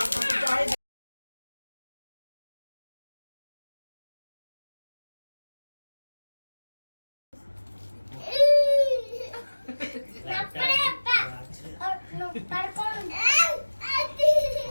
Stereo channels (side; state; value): both; inverted; correlation -1.00